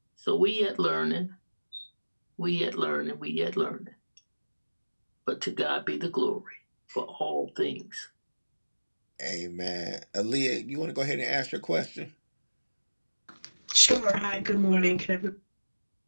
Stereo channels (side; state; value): both; inverted; correlation -1.00